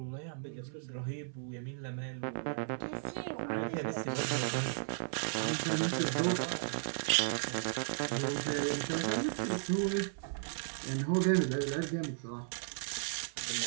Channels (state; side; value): silent; left; 54 dB below the other